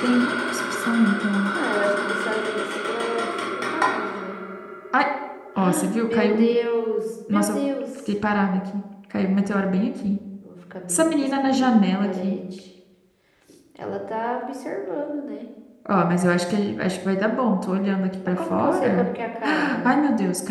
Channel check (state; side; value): identical; both; correlation 1.00